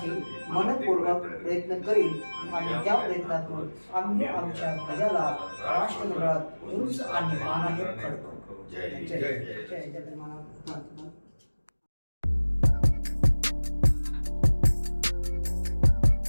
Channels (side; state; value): both; inverted; correlation -1.00